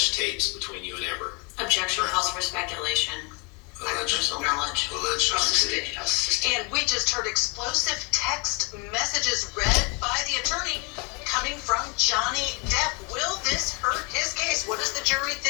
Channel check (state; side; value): quieter; right; 31.2 dB